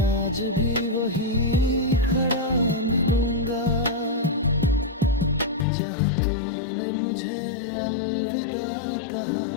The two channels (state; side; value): drops out; right; at 5.7 s